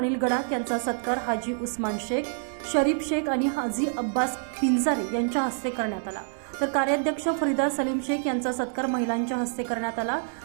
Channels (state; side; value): silent; left; digital silence